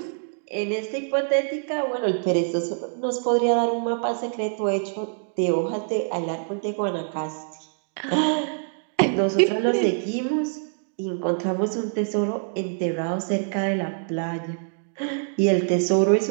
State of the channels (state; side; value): silent; left; digital silence